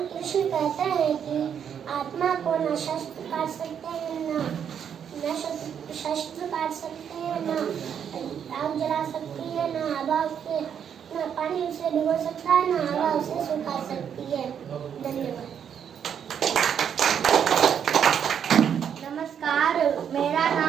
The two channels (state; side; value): quieter; left; 8.2 dB